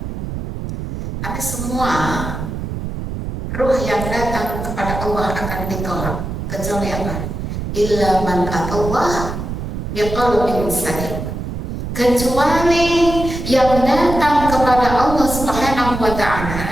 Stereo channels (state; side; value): noise; right; rumble, 5 dB below the sound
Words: ada semua ruh yang datang kepada Allah akan ditolak, kecuali apa? Illa man atallah biqalbin salim. Kecuali yang datang kepada Allah Subhanahu wa